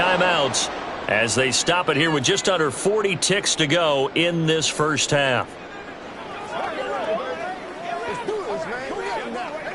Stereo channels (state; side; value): identical; both; correlation 1.00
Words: as they stop it here with just under 40 ticks to go in this first half.